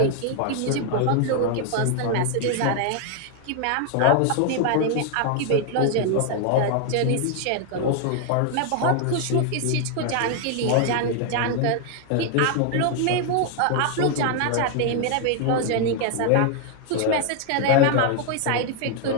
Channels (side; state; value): both; different; correlation 0.00